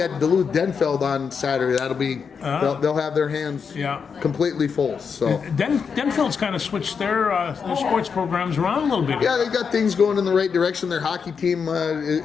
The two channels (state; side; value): quieter; right; 6.1 dB